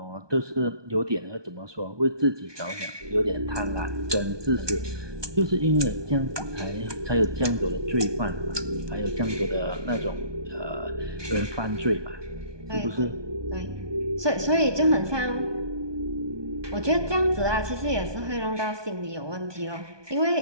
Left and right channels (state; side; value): late; left; 1.2 ms